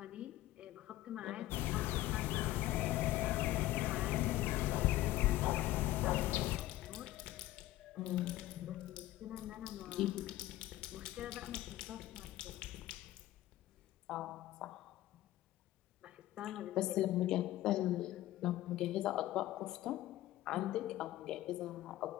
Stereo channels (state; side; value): quieter; right; 15.5 dB